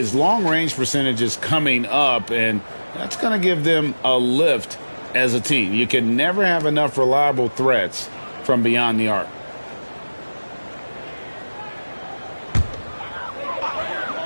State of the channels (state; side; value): inverted; both; correlation -1.00